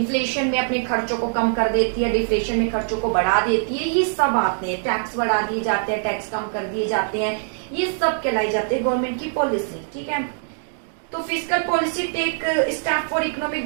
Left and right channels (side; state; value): left; silent; digital silence